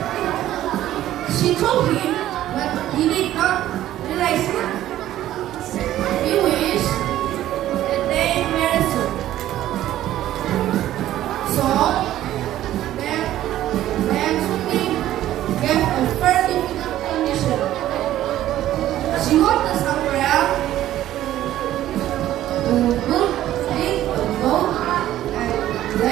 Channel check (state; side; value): quieter; left; 13.3 dB